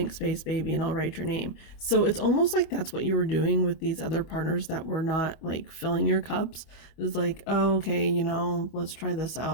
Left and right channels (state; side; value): late; right; 25 ms